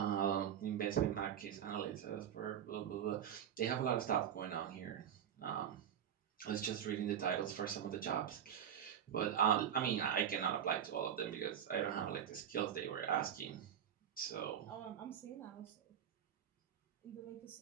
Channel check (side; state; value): left; quieter; 9.1 dB